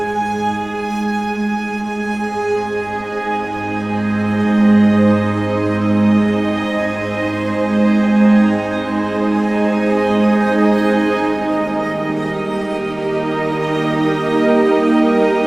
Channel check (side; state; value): right; noise; rumble, 26 dB below the sound